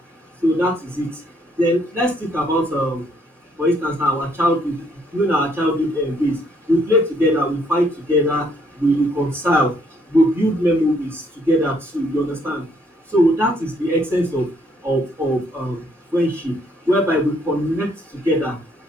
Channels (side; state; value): both; normal; correlation 0.68